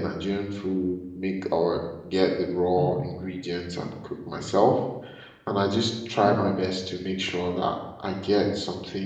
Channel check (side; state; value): both; identical; correlation 1.00